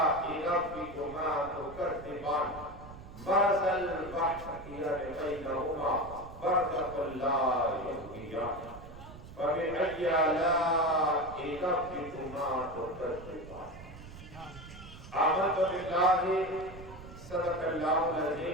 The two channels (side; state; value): right; noise; rumble, 15 dB below the sound